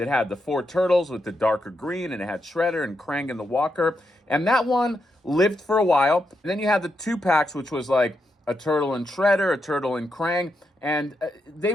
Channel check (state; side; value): normal; both; correlation 0.83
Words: had the 4 turtles with the darker green, and it had Shredder and Krang and the Walker. And that one lived for a while. And then you had the 2 packs, which was like a turtle and Shredder, a turtle and Krang, and they